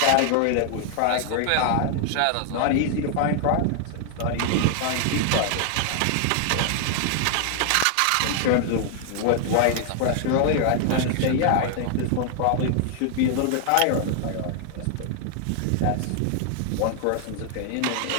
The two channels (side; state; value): both; different; correlation 0.00